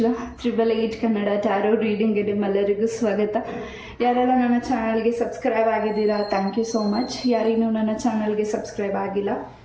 888 ಕನ್ನಡ ಟ್ಯಾರೋ ರೀಡಿಂಗ್ಗೆ ನಿಮ್ಮೆಲ್ಲರಿಗೂ ಸ್ವಾಗತ. ಯಾರೆಲ್ಲ ನನ್ನ ಚಾನಲ್ಗೆ ಸಬ್ಸ್ಕ್ರೈಬ್ ಆಗಿದ್ದೀರಾ, ಥ್ಯಾಂಕ್ ಯು ಸೋ ಮಚ್. ಯಾರಿನ್ನೂ ನನ್ನ ಚಾನಲ್ಗೆ ಸಬ್ಸ್ಕ್ರೈಬ್ ಆಗಿಲ್ಲ,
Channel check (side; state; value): both; identical; correlation 1.00